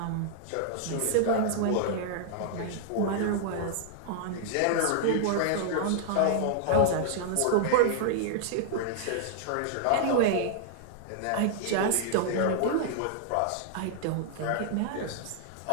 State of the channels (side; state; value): both; different; correlation -0.01